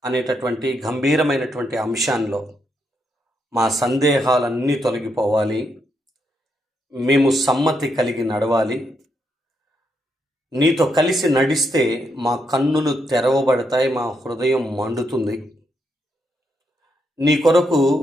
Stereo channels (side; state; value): both; normal; correlation 0.79